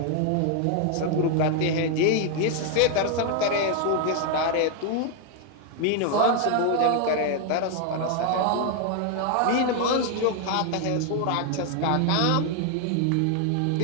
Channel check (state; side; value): different; both; correlation 0.00